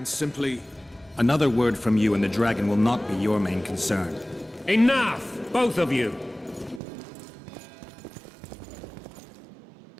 simply... Another word from you and the dragon will not be your main concern. Enough! Both of you!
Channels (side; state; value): left; drops out; at 6.8 s